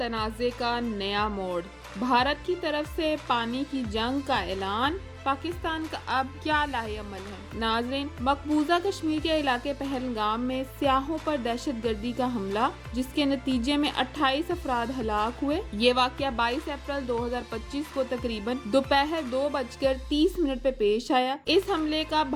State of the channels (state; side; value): identical; both; correlation 1.00